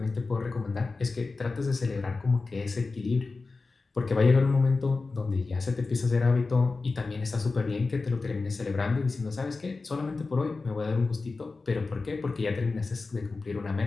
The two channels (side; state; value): right; quieter; 3.9 dB